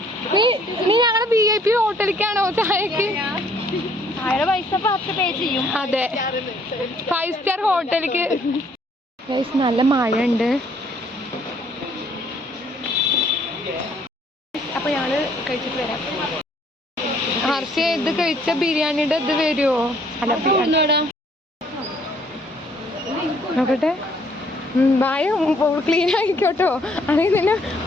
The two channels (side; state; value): both; normal; correlation 0.63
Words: നീ ഞങ്ങളുടെ VIP ഹോട്ടലിലേക്കാണോ ചായക്ക്? പൈസ 10 പേ ചെയ്യും. അതെ, 5 സ്റ്റാർ ഹോട്ടലിലേക്ക്. നല്ല മഴ ഉണ്ട്. അപ്പൊ ഞങ്ങള് കഴിച്ചിട്ട് വരാം. ഹർഷ ഇത് കഴിച്ച ബിരിയാണിയുടെ ഇത് വരുമോ? അല്ല, നോക്കട്ടെ. വായ ക്ലീൻ ആയിക്കോട്ടോ. അല്ലെങ്കിൽ തന്നെ